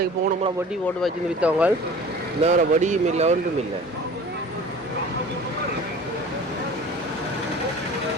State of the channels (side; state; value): both; normal; correlation 0.42